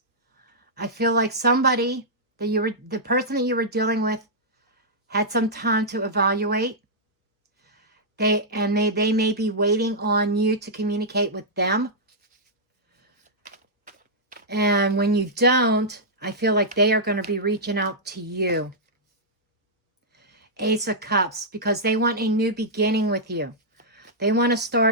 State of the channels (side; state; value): both; normal; correlation -0.10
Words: I feel like somebody that the person that you were dealing with had some time to evaluate. They may be waiting on you to communicate with them. And when you don't, I feel like they are going to be reaching out to you. Ace of Cups, because they want a new beginning with you. They want to